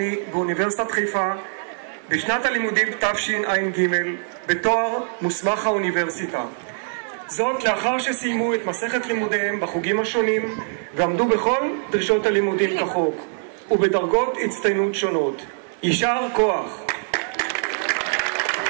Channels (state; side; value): silent; left; 63 dB below the other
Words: באוניברסיטת חיפה בשנת הלימודים תשע"ג בתואר מוסמך האוניברסיטה. זאת לאחר שסיימו את מסכת לימודיהם בחוגים השונים ועמדו בכל דרישות הלימודים כחוק ובדרגות הצטיינות שונות. יישר כוח.